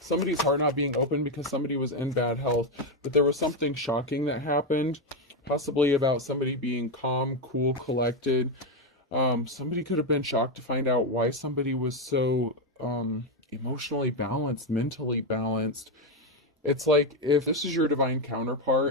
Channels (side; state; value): both; normal; correlation 0.07